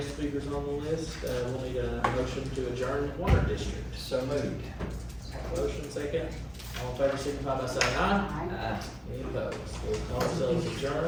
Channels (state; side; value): identical; both; correlation 1.00